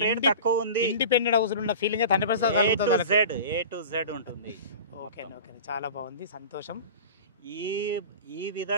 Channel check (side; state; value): both; inverted; correlation -0.35